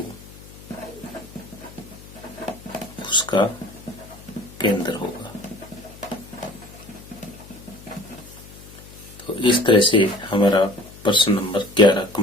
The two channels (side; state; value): left; noise; hum, 19 dB below the sound